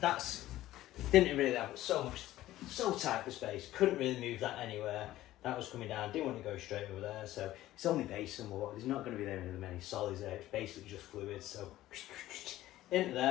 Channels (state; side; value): quieter; right; 15.0 dB